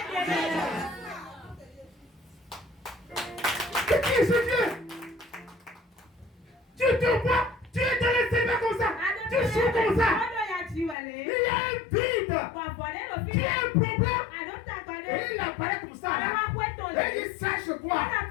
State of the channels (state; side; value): drops out; right; at 11.0 s